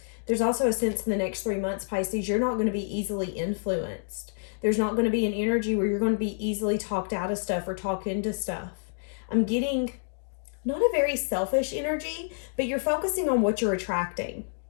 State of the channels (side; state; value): right; silent; digital silence